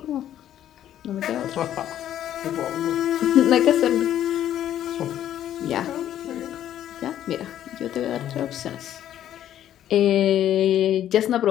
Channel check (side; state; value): right; quieter; 11.3 dB